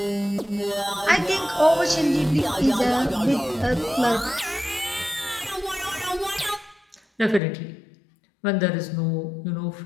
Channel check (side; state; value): right; drops out; at 7.4 s